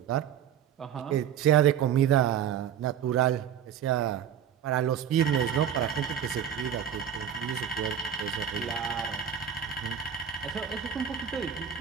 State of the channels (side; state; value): left; quieter; 9.1 dB